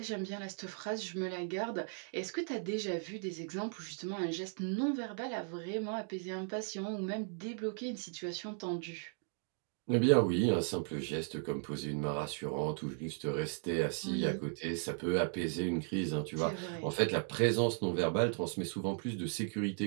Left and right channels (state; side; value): silent; left; 53 dB below the other